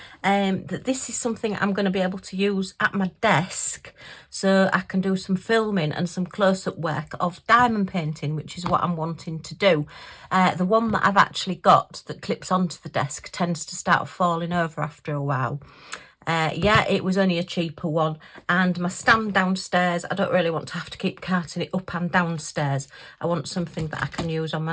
that this is something I'm going to be able to use at my desk, so I can do some filming and some close-up work of diamond painting, which is what I'm wanting to do. The one that I've actually got that clips onto the desk tends to start falling over after a while. Yeah, it was only a cheaper one, and my stand downstairs, I don't really want to have to keep carting it up and downstairs. I want something that I can use on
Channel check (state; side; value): identical; both; correlation 1.00